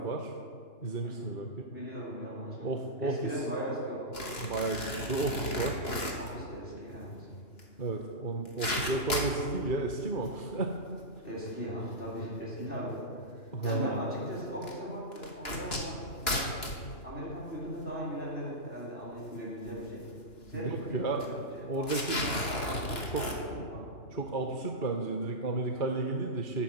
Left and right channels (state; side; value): late; right; 2.9 ms